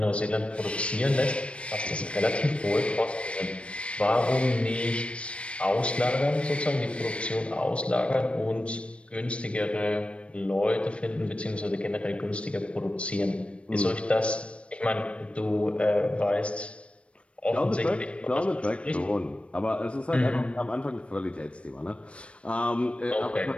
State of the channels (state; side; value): late; right; 0.060 ms